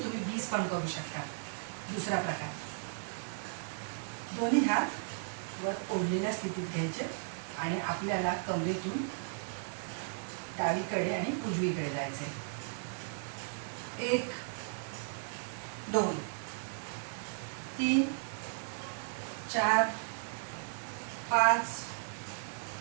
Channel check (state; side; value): silent; left; digital silence